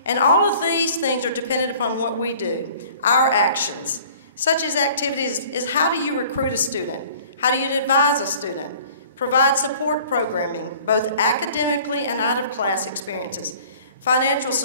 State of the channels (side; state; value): both; inverted; correlation -0.50